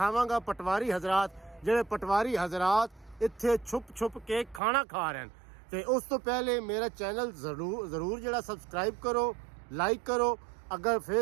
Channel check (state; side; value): drops out; left; at 4.6 s